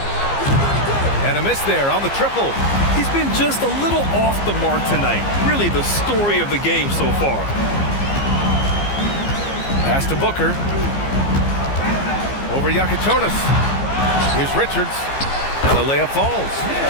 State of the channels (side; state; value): right; late; 15 ms